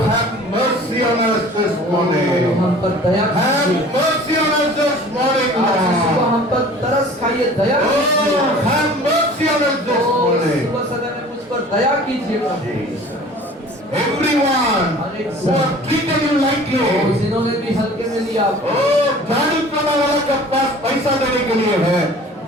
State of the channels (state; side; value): normal; both; correlation 0.46